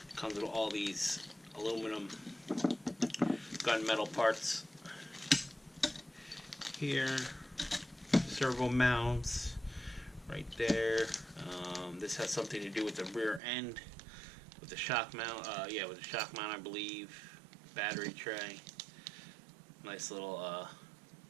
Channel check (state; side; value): drops out; left; at 13.4 s